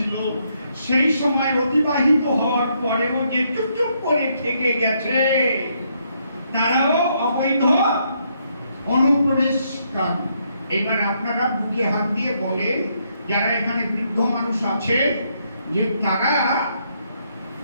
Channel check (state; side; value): inverted; both; correlation -0.74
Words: সেই সময় অতিবাহিত হওয়ার পরেও যে চুপচুপ করে থেকে গেছে, তারাও অবৈধ অনুপ্রবেশকারী। এবার আপনারা বুকে হাত দিয়ে বলেন, যারা এখানে বৃদ্ধ মানুষ আছে, যে তারা